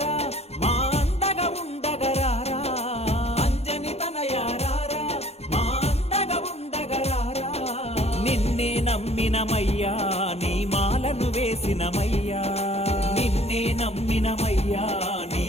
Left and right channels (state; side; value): late; right; 0.30 ms